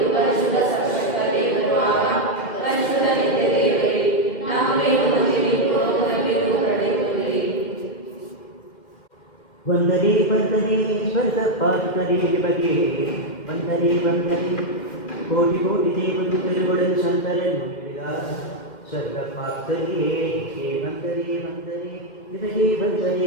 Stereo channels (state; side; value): late; right; 2.1 ms